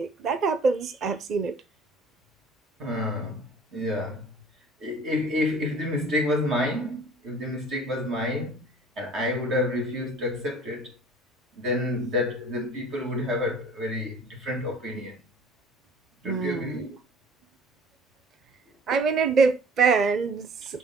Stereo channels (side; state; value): both; normal; correlation 0.48